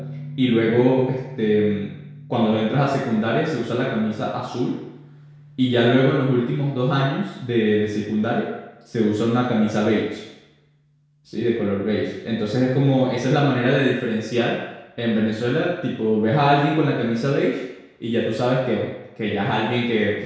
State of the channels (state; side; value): identical; both; correlation 1.00